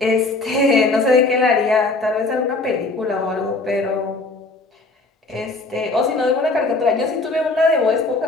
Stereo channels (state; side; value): quieter; right; 3.4 dB